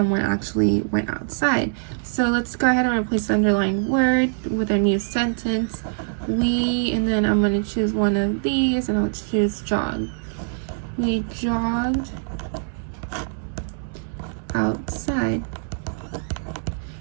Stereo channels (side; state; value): left; silent; digital silence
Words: actually went outside. So let's go ahead and replace the underlined word with a new sentence. We, and then I'm going to choose one of these, and I'll choose jog. We jogged outside.